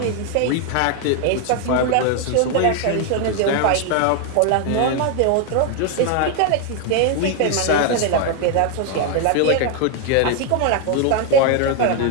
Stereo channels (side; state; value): both; different; correlation 0.01